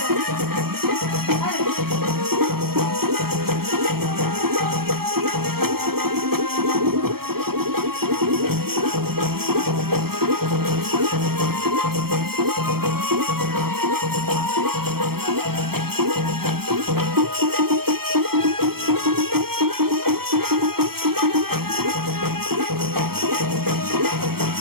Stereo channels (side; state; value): left; late; 0.94 ms